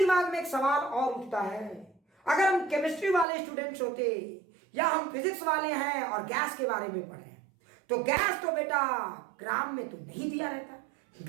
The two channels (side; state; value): left; drops out; at 3.2 s